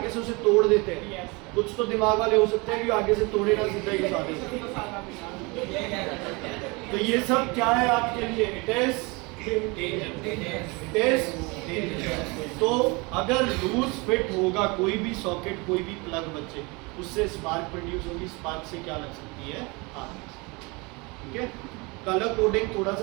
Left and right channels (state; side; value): quieter; left; 27.1 dB